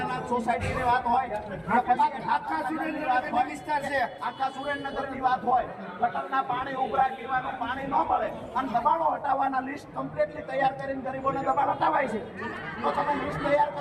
સોસાયટીની વાત હોય, આખા સુરેન્દ્રનગરની વાત હોય, વિસ્તાર છે આખા સુરેન્દ્રનગરની વાત હોય, ગટરના પાણી ઉભરાય, પીવાનું પાણી ન મળે અને દબાણો હટાવવાના લિસ્ટ કમ્પ્લીટલી તૈયાર કરીને ગરીબોને દબાણ હટાવાય છે। તો તમે લિસ્ટ તૈયાર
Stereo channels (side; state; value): both; identical; correlation 1.00